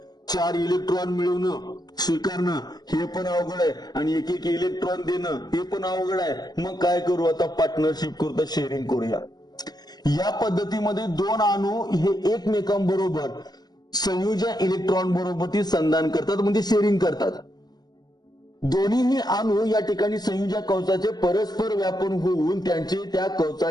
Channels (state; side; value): late; right; 0.19 ms